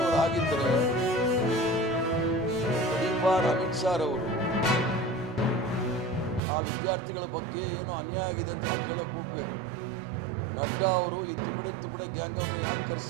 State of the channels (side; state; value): left; drops out; at 6.4 s